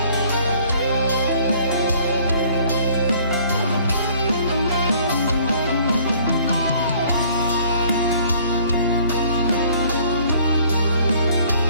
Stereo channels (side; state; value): both; inverted; correlation -0.57